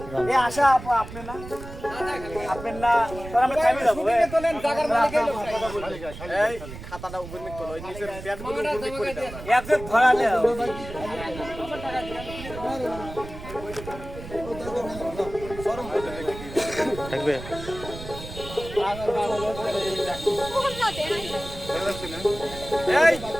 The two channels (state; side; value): noise; right; rumble, 12 dB below the sound